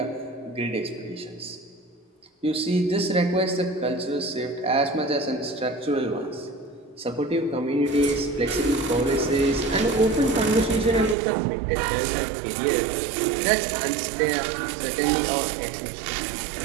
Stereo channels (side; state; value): left; drops out; at 11.2 s